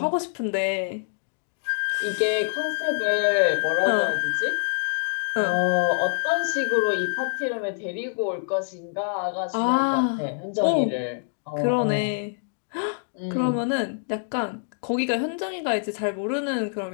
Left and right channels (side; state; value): right; silent; digital silence